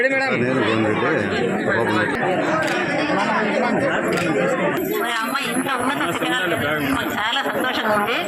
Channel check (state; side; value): identical; both; correlation 1.00